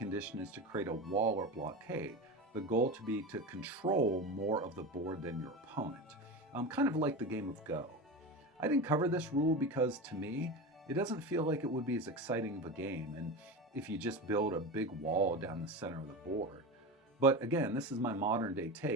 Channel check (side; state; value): both; normal; correlation 0.24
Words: is to create a wall or blockade, the goal to be to control more of the board than your opponent. kind of like the game of Go. I didn't cover this rule because, to me, it doesn't feel like it would be as exciting of a game, and if you just build a big wall down the center of the board. But again, this is my modern day